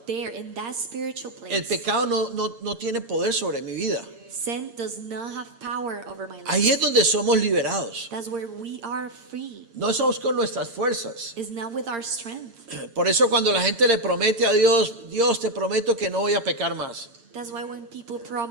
there in that spiritual el place, pecado no tiene poder sobre mi vida. sin does not have power over my life. Ahí es donde somos liberados. That's where we are free. No somos con nuestras fuerzas. It's not with our strength. Por eso cuando la gente le promete a Dios, Dios, te prometo que no voy a pecar más. That's why when people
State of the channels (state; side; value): late; left; 8.7 ms